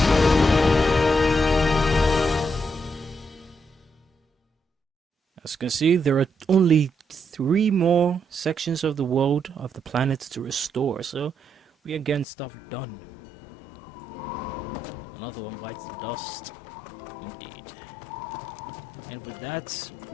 As you can see, there are only 3 more sections of the world, of the planet to restore, so we are getting stuff done. Another one bites the dust. Indeed. And with that,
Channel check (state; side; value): drops out; right; at 12.2 s